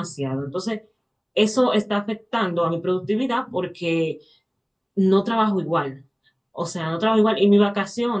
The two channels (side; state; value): both; identical; correlation 1.00